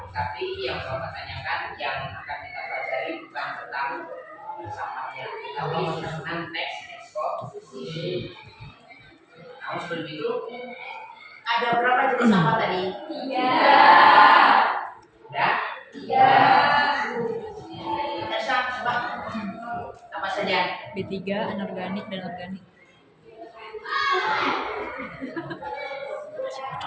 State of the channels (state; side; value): identical; both; correlation 1.00